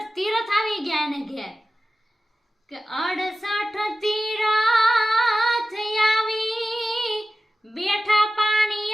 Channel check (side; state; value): both; normal; correlation 0.95